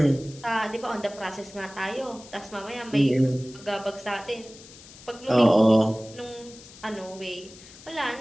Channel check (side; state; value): left; noise; hiss, 19 dB below the sound